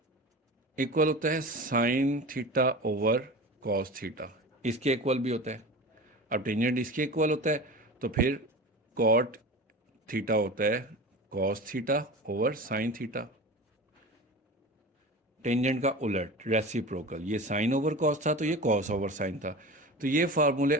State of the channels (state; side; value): normal; both; correlation 0.32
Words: इक्वल होता है sign theta over cos theta, इसके इक्वल भी होता है। अब टेंजेंट इसके इक्वल होता है, तो फिर कॉट थीटा होता है cos theta over sine theta. Tangent का उलट रेसिप्रोकल, ये साइन ओवर कॉस था तो ये कॉस ओवर साइन था। तो ये फार्मूले